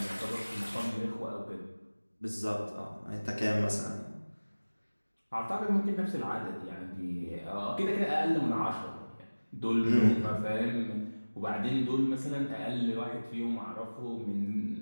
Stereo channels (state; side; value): inverted; both; correlation -1.00